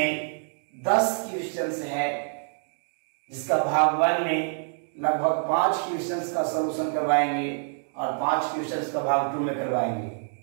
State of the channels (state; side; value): silent; left; digital silence